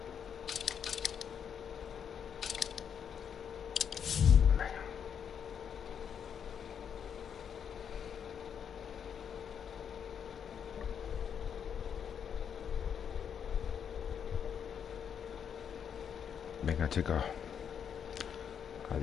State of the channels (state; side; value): quieter; right; 7.8 dB